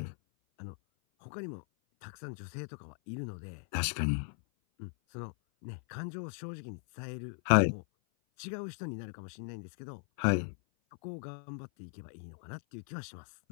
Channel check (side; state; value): right; silent; 53 dB below the other